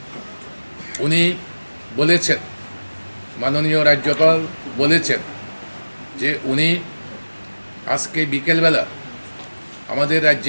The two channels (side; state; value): both; inverted; correlation -1.00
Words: উনি বলেছেন, মাননীয় রাজ্যপাল বলেছেন যে উনি আজকে বিকেলবেলা আমাদের